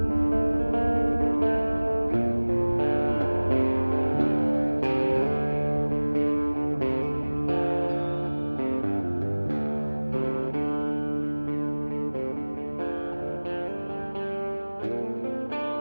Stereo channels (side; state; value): both; inverted; correlation -1.00